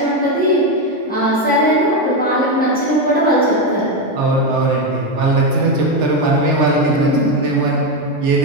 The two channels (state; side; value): normal; both; correlation 0.09